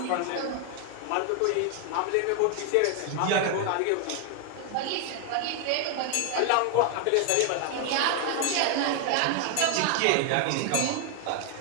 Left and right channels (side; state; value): both; different; correlation 0.01